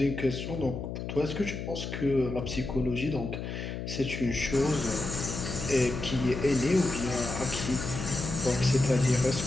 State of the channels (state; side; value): noise; left; hum, 6 dB below the sound